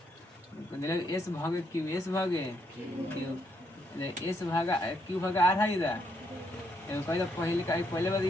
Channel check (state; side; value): normal; both; correlation 0.75